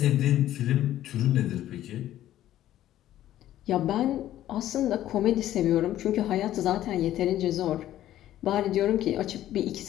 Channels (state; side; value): quieter; right; 13.0 dB